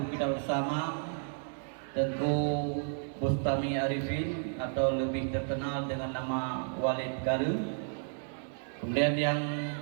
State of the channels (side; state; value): left; silent; digital silence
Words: kita bersama, tentu Bustami Arifin atau lebih terkenal dengan nama Walid Garu. Kemudian yang